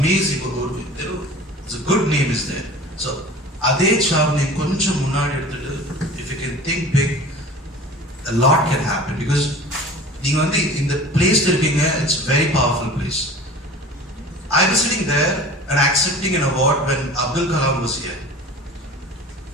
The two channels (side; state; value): both; normal; correlation 0.41